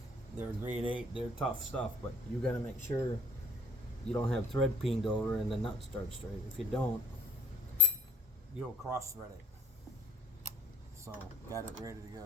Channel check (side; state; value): both; normal; correlation 0.58